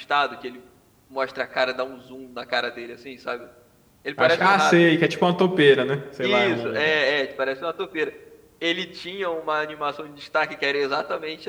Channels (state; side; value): identical; both; correlation 1.00